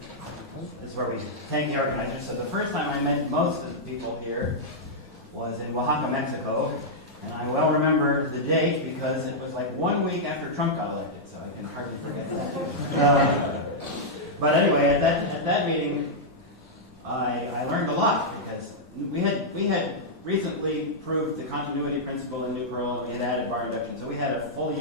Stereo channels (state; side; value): normal; both; correlation -0.08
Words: this is where we thank the organizers. So the first time I met most of the people here was in Oaxaca, Mexico. And I well remember the date because it was like 1 week after Trump got elected, so I can hardly forget that. But anyway, at that meeting, I learned a lot because we had recently proved the continuity principle in Nuprl, and we had added bar induction, so we had a fully